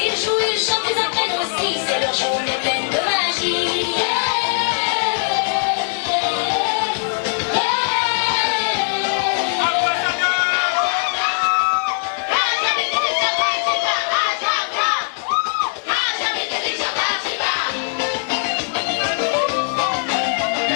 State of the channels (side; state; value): right; silent; digital silence